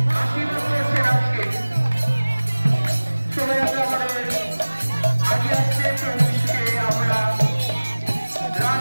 আশীর্বাদ করেছেন। আজকে শোভাযাত্রা আমাদের আগে আসছে। প্রভুকে আমরা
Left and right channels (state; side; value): inverted; both; correlation -1.00